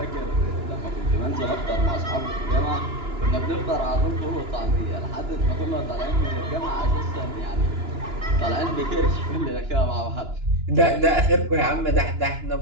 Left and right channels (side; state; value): left; late; 2.9 ms